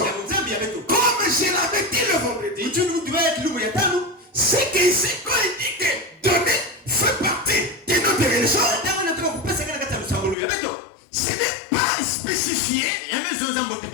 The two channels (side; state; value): right; drops out; at 10.4 s